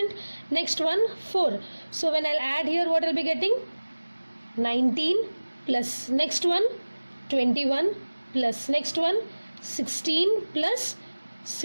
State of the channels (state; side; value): inverted; both; correlation -1.00